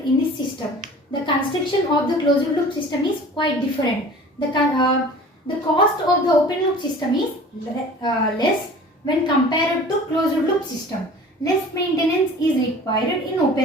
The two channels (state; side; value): normal; both; correlation 0.43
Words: this system. The construction of the closed loop system is quite different. The cost of the open loop system is less when compared to closed loop system. Less maintenance is required in